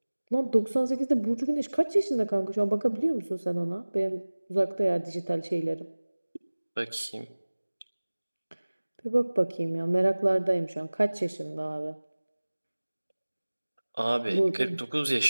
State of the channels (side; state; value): both; inverted; correlation -1.00